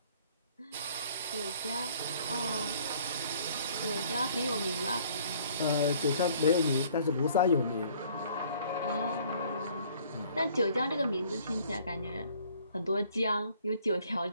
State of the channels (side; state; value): both; inverted; correlation -0.58